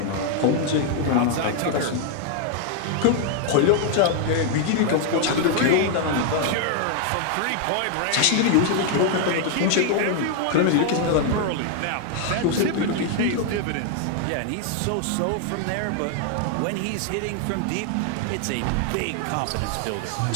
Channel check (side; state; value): both; different; correlation 0.00